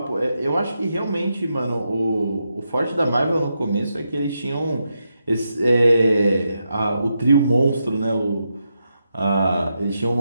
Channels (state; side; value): inverted; both; correlation -0.85